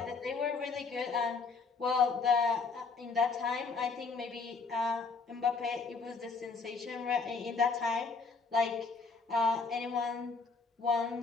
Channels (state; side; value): quieter; right; 4.6 dB